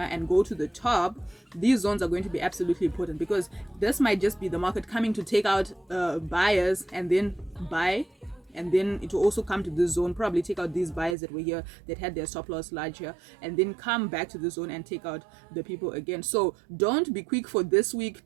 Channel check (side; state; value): left; drops out; at 11.2 s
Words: and go to the top, these zones are going to be absolutely important, because this might just be the market coming to take out buyers and then buy, and then it will also come to this zone, probably take out these buyers that were here that had their stop loss larger, and then come back to the zone and take out the people again. So don't be quick for this week